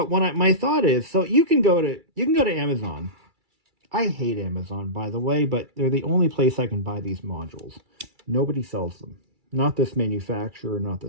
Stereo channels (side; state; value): left; late; 2.3 ms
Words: my thought is, so you can go to Amazon. I hate Amazon, by the way, but they're the only place I can buy these modules. Nobody sells them. Not this manufacturer, not